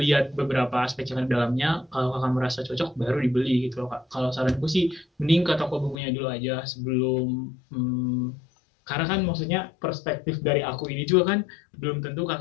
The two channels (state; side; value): drops out; right; at 6.0 s